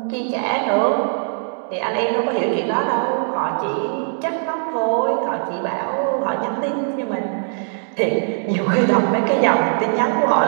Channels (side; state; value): left; silent; 65 dB below the other